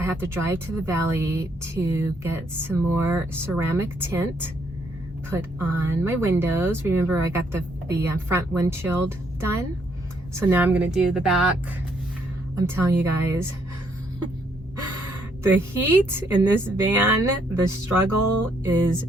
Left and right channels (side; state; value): both; normal; correlation 0.71